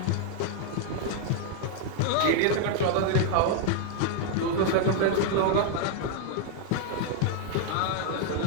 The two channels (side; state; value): both; different; correlation 0.00